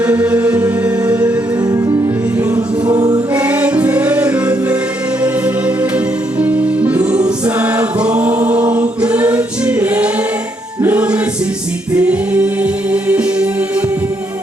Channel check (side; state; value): both; normal; correlation 0.75